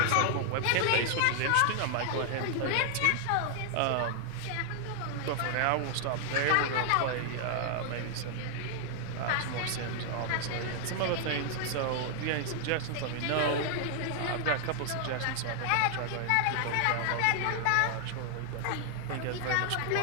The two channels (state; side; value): different; both; correlation 0.00